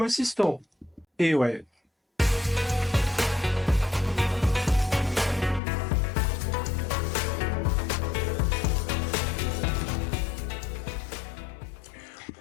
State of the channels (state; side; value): drops out; right; at 5.6 s